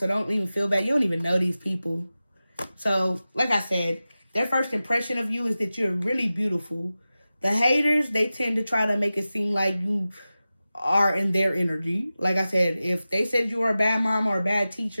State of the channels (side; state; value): both; inverted; correlation -0.95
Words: don't even feel bad. You don't even know these people. So, like I said, their first impression of you is that you're really beautiful. The haters, they tend to try to make it seem like you are in their energy. Like I said, if they said you were a bad mom or a bad